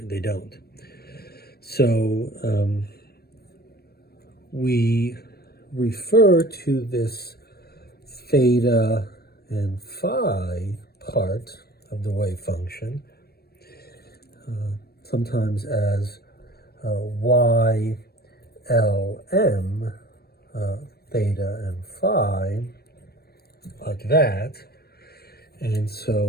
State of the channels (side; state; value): right; late; 0.46 ms